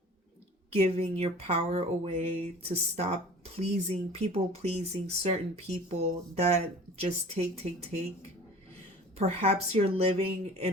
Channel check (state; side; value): normal; both; correlation 0.43